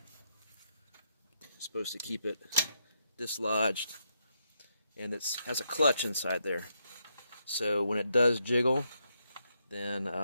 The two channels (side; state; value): both; inverted; correlation -0.79